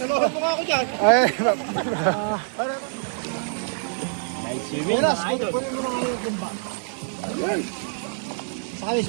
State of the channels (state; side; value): silent; left; digital silence